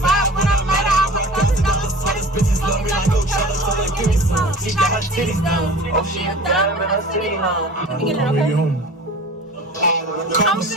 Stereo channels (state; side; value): normal; both; correlation 0.41